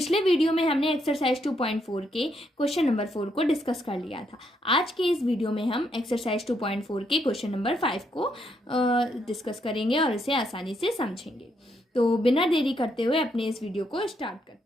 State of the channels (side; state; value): both; normal; correlation 0.76